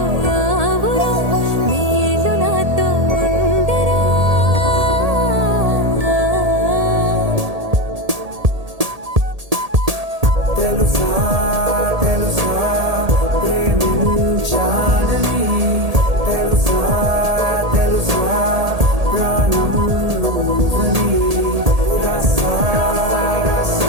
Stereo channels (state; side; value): late; left; 1.8 ms